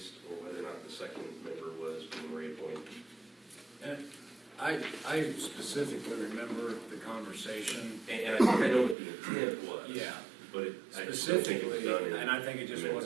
or whether or not the second member was being reappointed. And I specifically remember the conversation. And I think I know what the intent was. Yeah. But I just don't think it was Specifically, done in and I think it just the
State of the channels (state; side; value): drops out; left; at 9.0 s